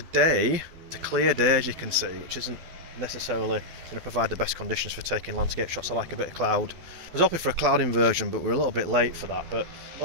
it's a clear day as you can see, which isn't necessarily going to provide the best conditions for taking landscape shots. I like a bit of cloud. I was hoping for a cloud inversion, but we're a little bit late for that. But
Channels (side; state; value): left; late; 12 ms